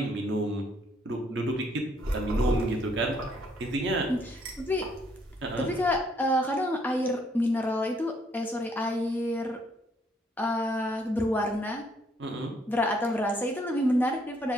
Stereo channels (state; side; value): normal; both; correlation 0.68